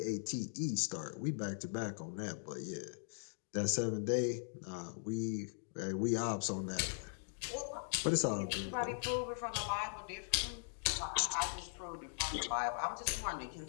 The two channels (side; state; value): right; silent; digital silence